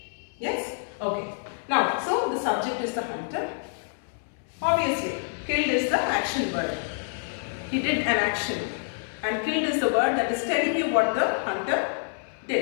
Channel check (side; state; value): right; silent; 60 dB below the other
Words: Yes? Okay. Now, so the subject is the hunter. Obviously, killed is the action word. He did an action. And killed is the word that is telling you what the hunter